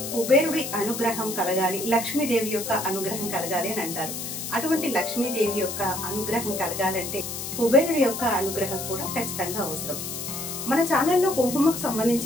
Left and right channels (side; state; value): left; noise; hiss, 6 dB below the sound